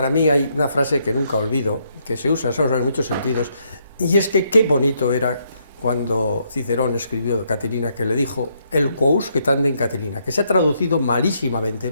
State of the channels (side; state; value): both; inverted; correlation -0.74